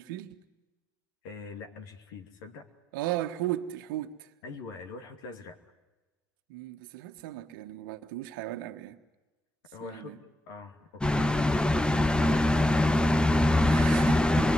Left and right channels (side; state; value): both; normal; correlation 0.85